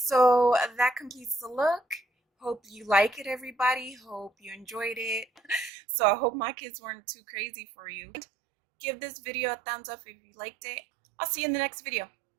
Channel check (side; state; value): left; drops out; at 5.7 s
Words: that completes the look. Hope you like it, everybody. Hope you enjoyed it. So I hope my kids weren't too crazy for you. Give this video a thumbs up if you liked it. I'll see you in the next video.